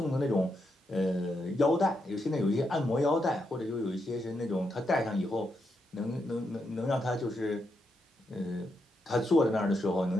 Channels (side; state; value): both; normal; correlation 0.82